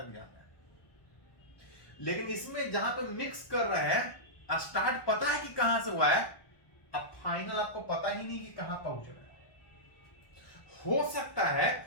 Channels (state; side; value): late; right; 1.1 ms